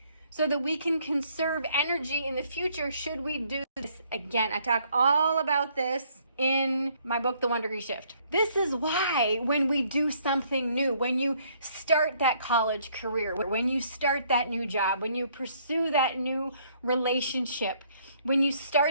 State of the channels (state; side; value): inverted; both; correlation -0.66